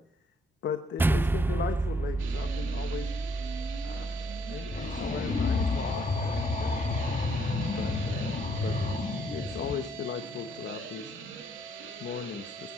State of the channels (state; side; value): normal; both; correlation 0.70